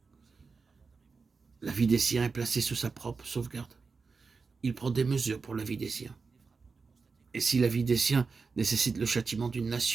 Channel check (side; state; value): left; quieter; 4.7 dB